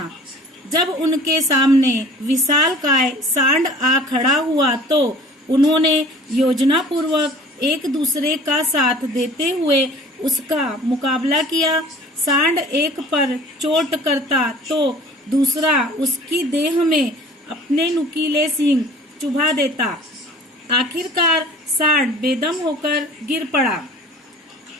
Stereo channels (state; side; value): normal; both; correlation 0.47